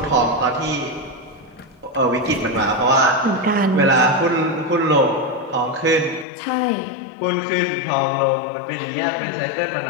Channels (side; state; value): right; drops out; at 6.2 s